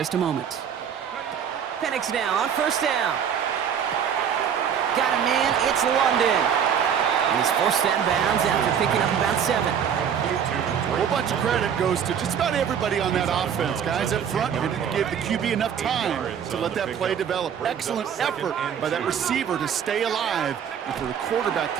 a moment. Penix now on 1st down. Got a man, it's London. And he's forced out of bounds after picking up about 7. A whole bunch of credit goes to just about everybody on that offense. Guys up front didn't give the QB enough time to let that play develop. Excellent effort by that receiver to stay alive and for the quarterback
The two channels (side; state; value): left; quieter; 8.1 dB